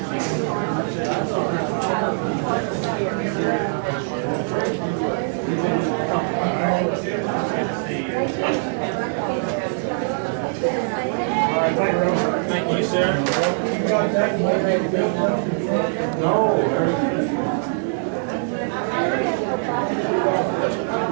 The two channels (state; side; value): silent; left; digital silence